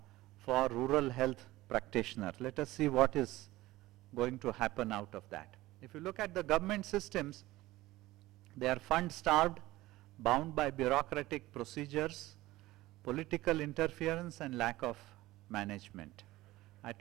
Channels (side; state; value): left; quieter; 17.8 dB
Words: for rural health practitioners. Let us see what is going to happen out of that. If you look at the government systems, they are fund-starved, bound by bureaucratic procedures, political interference and lack of management. I